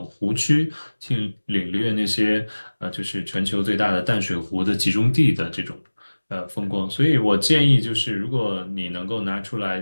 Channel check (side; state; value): both; inverted; correlation -1.00